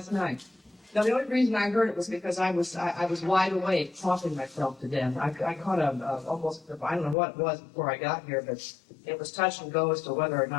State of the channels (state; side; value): drops out; right; at 7.2 s